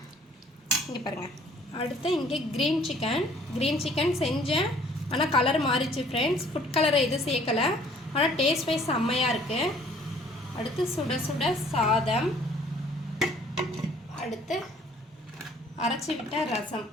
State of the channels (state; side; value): normal; both; correlation 0.57